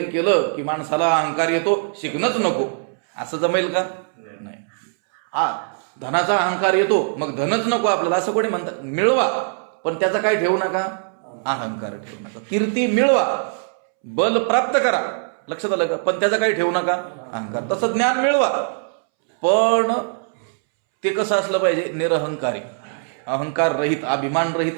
केलं की माणसाला अहंकार येतो, शिकणंच नको, असं जमेल का? नाही. धनाचा अहंकार येतो, मग धनच नको आपल्याला, असं कोणी म्हणतात. मिळवा, पण त्याचा काय ठेवू नका, अहंकार ठेवू नका. कीर्ती मिळवा, बल प्राप्त करा, लक्षात आलं का, पण त्याचा काही ठेवू नका, अहंकार. तसं ज्ञान मिळवा, पण ते कसं असलं पाहिजे, निरहंकारी, अहंकार रहित, अभिमान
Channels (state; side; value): silent; left; 65 dB below the other